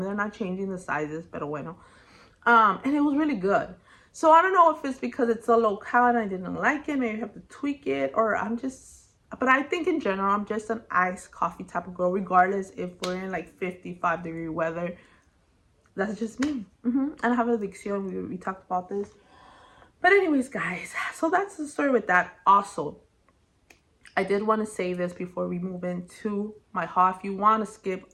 they're not changing the sizes, pero bueno. And it was really good. So I don't know if it's because it's a low-cal and I didn't like it. Maybe I have to tweak it, or I'm just, but I think in general, I'm just an iced coffee type of girl, regardless if we're in like 55-degree weather. That's just me. And I have addiction. We talked about this. But anyways, guys, so that's the story with that. Also, I did want to say this before we move into my haul. If you want to skip,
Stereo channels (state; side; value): identical; both; correlation 1.00